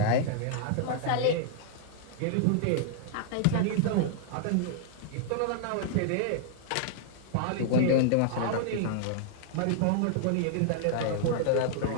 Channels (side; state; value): both; different; correlation -0.01